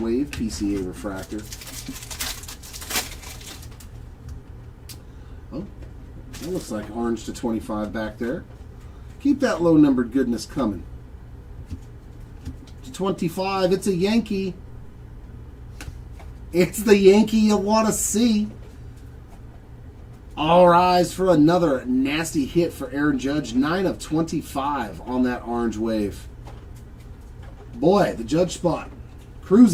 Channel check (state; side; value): identical; both; correlation 1.00